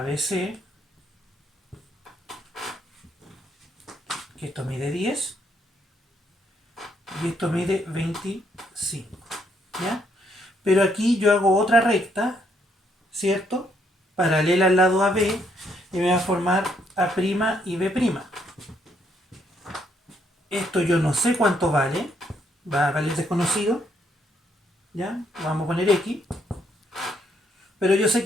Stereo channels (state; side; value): normal; both; correlation 0.72